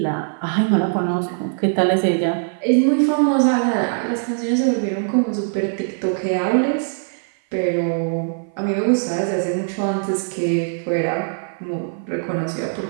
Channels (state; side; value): silent; left; 55 dB below the other